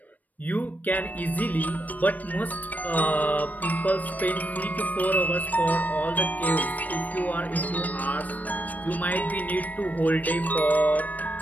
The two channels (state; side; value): late; right; 0.078 ms